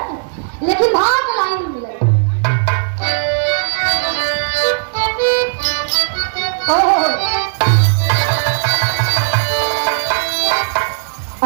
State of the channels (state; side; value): silent; left; 69 dB below the other